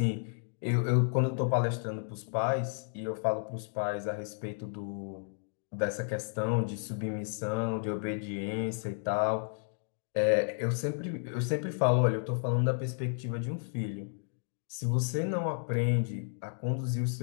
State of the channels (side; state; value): right; silent; digital silence